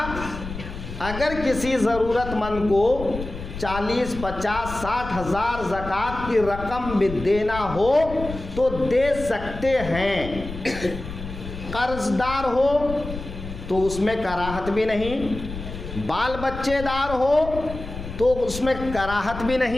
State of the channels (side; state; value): left; noise; rumble, 10 dB below the sound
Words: اگر کسی ضرورت مند کو 40، 50، 60 ہزار زکوٰۃ کی رقم بھی دینا ہو تو دے سکتے ہیں۔ قرض دار ہو تو اس میں کراہت بھی نہیں، بال بچے دار ہو تو اس میں کراہت بھی